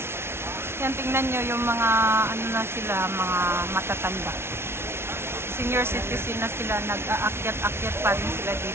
Yan, tingnan nyo yung mga na sila, mga matatanda. Senior citizen na sila, nag-aakyat-akyat pa rin sila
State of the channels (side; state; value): left; late; 0.12 ms